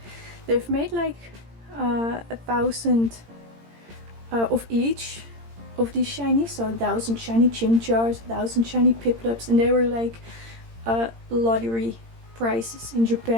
they've made like 1,000 of each of these shinies, so 1,000 shiny Chimchars, 1,000 shiny Piplups, and they were like lottery prices in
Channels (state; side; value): late; left; 18 ms